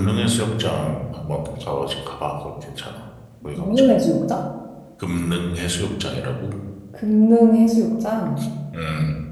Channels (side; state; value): both; identical; correlation 1.00